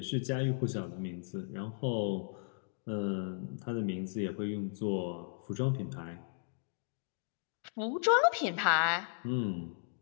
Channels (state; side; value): silent; right; digital silence